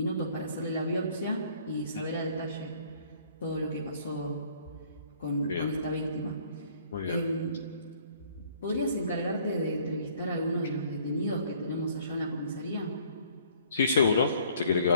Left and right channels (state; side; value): inverted; both; correlation -0.59